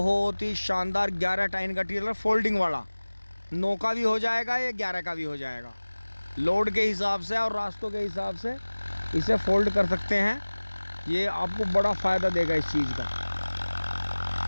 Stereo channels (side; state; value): both; inverted; correlation -1.00